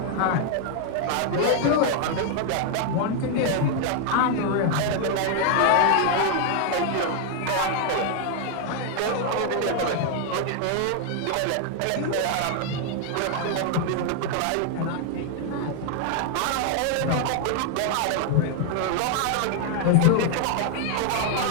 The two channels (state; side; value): different; both; correlation 0.00